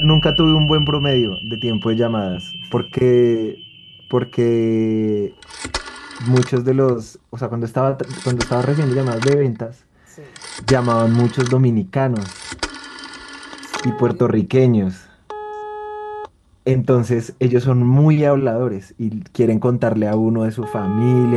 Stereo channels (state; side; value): identical; both; correlation 1.00